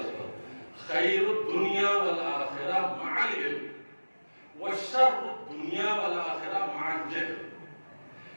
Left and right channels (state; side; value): inverted; both; correlation -1.00